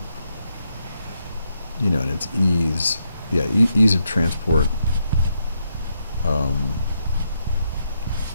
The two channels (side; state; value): both; inverted; correlation -0.79